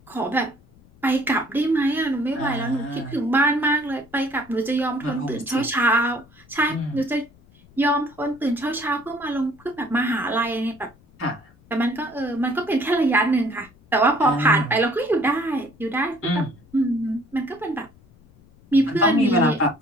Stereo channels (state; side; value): noise; left; rumble, 27 dB below the sound